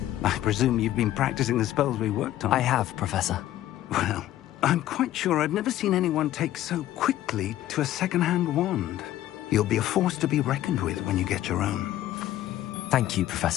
I presume you've been practicing the spells we worked on. I have, Professor. Well, I'm quite sure I've never seen anyone take so quickly to a second-hand wand. You'll be a force to be reckoned with when you get your own. Thank you,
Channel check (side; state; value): right; quieter; 13.5 dB